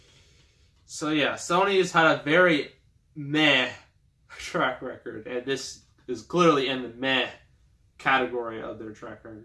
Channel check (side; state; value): both; identical; correlation 1.00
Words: So yeah, Sony has had a very meh track record. And this is clearly in the meh category of their track